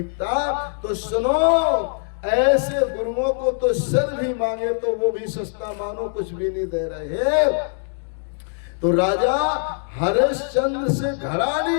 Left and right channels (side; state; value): right; silent; digital silence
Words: तो सुनो, ऐसे गुरुओं को तो सर भी मांगे तो वो भी सस्ता मानो कुछ भी नहीं दे रहे। तो राजा हरिश्चंद्र से घड़ा